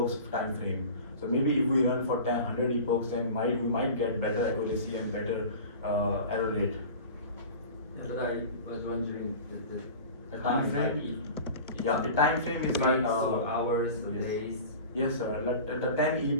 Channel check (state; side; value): inverted; both; correlation -0.37